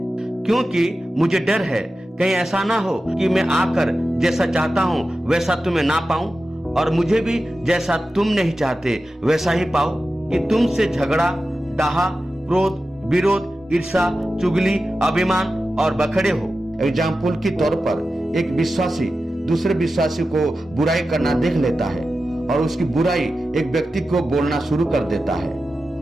क्योंकि मुझे डर है कहीं ऐसा ना हो कि मैं आकर जैसा चाहता हूं वैसा तुम्हें ना पाऊं, और मुझे भी जैसा तुम नहीं चाहते वैसा ही पाओ, कि तुमसे झगड़ा, डाहा, क्रोध, विरोध, ईर्ष्या, चुगली, अभिमान और बखड़े हो। एग्जाम्पल के तौर पर एक विश्वासी दूसरे विश्वासी को बुराई करना देख लेता है और उसकी बुराई एक व्यक्ति को बोलना शुरू कर देता है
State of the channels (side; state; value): both; normal; correlation 0.93